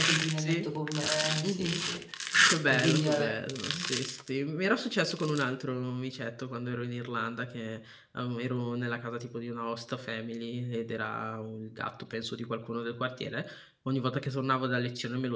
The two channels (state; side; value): identical; both; correlation 1.00